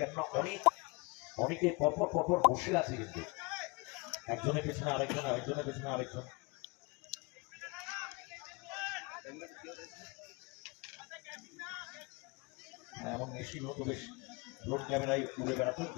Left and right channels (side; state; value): right; quieter; 27.9 dB